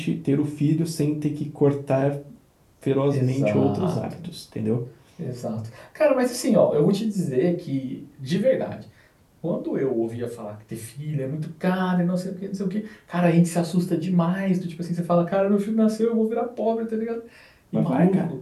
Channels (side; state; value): both; identical; correlation 1.00